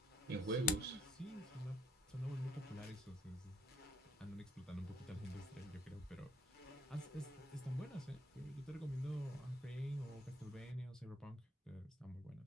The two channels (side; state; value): both; normal; correlation 0.66